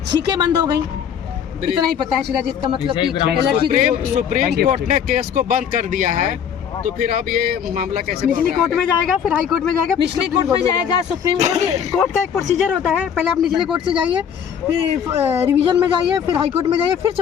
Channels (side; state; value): right; quieter; 8.1 dB